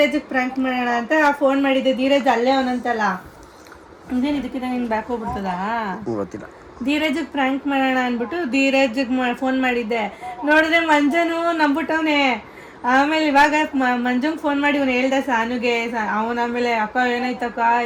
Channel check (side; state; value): both; identical; correlation 1.00